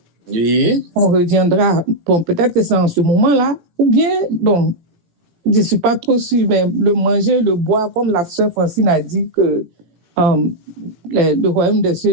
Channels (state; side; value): late; left; 18 ms